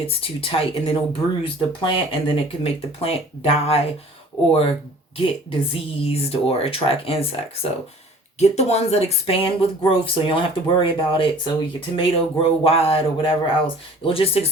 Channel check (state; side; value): normal; both; correlation 0.49